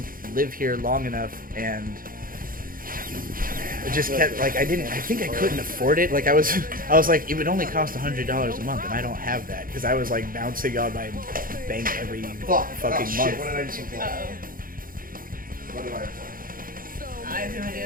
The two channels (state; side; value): late; left; 0.41 ms